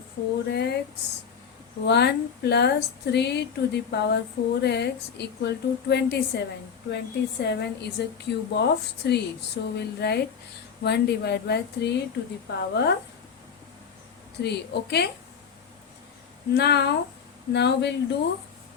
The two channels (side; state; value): right; quieter; 6.8 dB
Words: 4x 1 plus 3 to the power 4x equal to 27. 27 is a cube of 3. So we'll write 1 divided by 3 to the power 3. Okay. Now we'll do